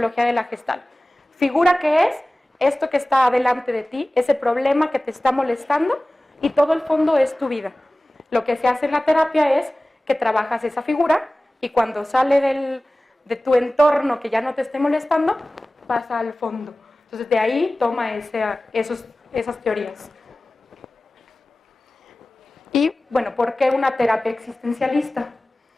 de la Gestalt. Figura, que es esto que está delante de ti, ese problema que te está molestando, y todo el fondo es tu vida. Lo que se hace en la terapia es que trabajas esa figura y cuando sale de tu entorno que ya no te esté molestando, pasa al fondo. Entonces de ahí toma esas teorías. Y bueno, ¿por qué una terapia existencialista?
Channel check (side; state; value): both; normal; correlation 0.97